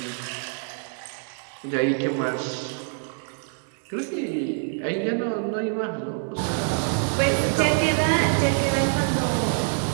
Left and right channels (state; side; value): silent; left; 61 dB below the other